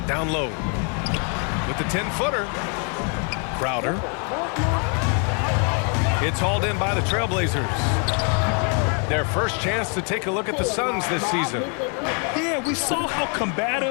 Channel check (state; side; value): quieter; right; 39.1 dB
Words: Down low. With the 10-footer. Crowder. It's hauled in by the Trailblazers. Their first chance to take a look at the Suns this season. Yeah, we saw how